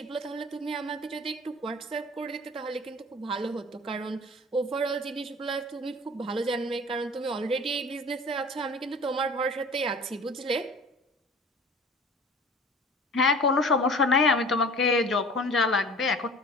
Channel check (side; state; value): both; normal; correlation 0.44